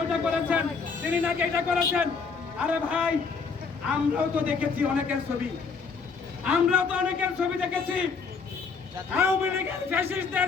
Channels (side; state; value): right; quieter; 5.1 dB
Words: ওইটা করেছেন, তিনি নাকি এটা করেছেন। আরে ভাই, আমরাও তো দেখেছি অনেকের ছবি, আমরাও তো অনেকের ছবি দেখেছি, আওয়ামী লীগের